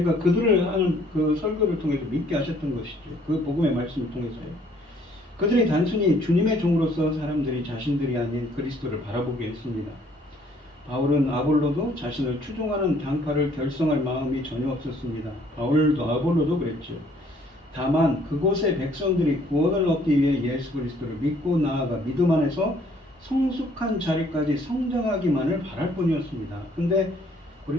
그들을 하는 그 설교를 통해서 믿게 하셨던 것이죠. 그 복음의 말씀을 통해서요. 그들이 단순히 주님의 종으로서 사람들이 자신들이 아닌 그리스도를 바라보게 했습니다. 바울은 아볼로도 자신을 추종하는 당파를 결성할 마음이 전혀 없었습니다. 바울도 아볼로도 그랬죠. 다만 그곳의 백성들이 구원을 얻기 위해 예수 그리스도를 믿고 나아가 믿음 안에서 성숙한 자리까지 성장하기만을 바랄 뿐이었습니다. 근데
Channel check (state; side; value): normal; both; correlation 0.62